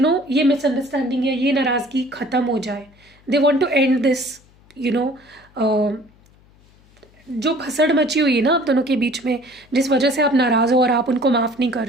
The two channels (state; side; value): noise; left; hum, 29 dB below the sound